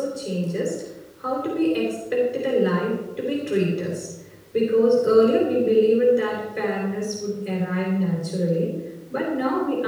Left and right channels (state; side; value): identical; both; correlation 1.00